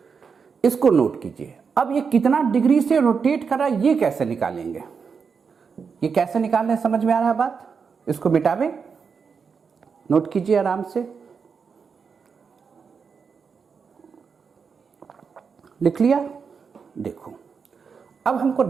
इसको नोट कीजिए। अब ये कितना डिग्री से रोटेट कर रहा है, ये कैसे निकालेंगे, ये कैसे निकालने समझ में आ रहा है बात, इसको मिटावे, नोट कीजिए आराम से। लिख लिया, देखो अब हमको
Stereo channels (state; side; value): quieter; left; 5.8 dB